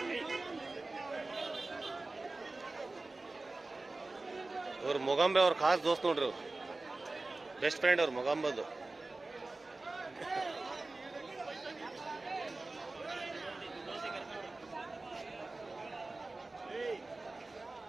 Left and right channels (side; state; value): left; quieter; 3.2 dB